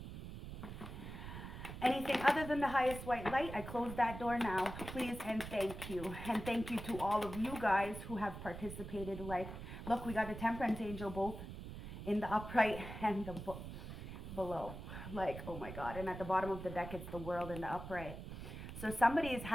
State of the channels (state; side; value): noise; right; rumble, 9 dB below the sound